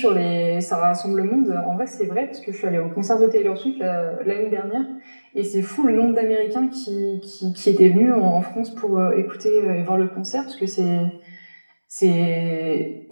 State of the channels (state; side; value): inverted; both; correlation -1.00